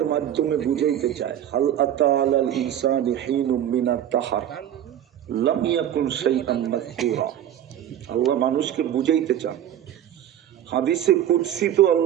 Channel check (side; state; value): left; quieter; 10.8 dB